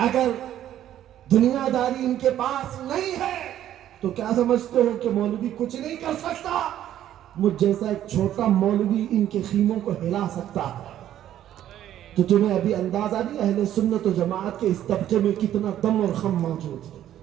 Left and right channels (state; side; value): quieter; left; 11.7 dB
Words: دنیا داری ان کے پاس نہیں ہے تو کیا سمجھتے ہو کہ مولوی کچھ نہیں کر سکتا؟ مجھ جیسا ایک چھوٹا مولوی ان کے خیموں کو ہلا سکتا ہے. تو تمہیں ابھی اندازہ نہیں اہل سنت و جماعت کے اس طبقے میں کتنا دم اور خم موجود ہے،